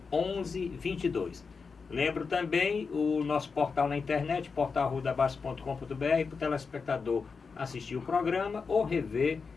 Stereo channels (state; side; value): quieter; right; 5.1 dB